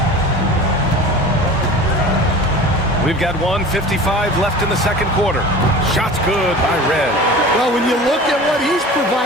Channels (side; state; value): both; normal; correlation 0.38